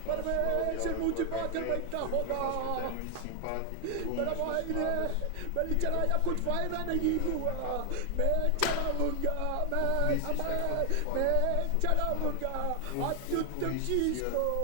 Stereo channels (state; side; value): different; both; correlation 0.00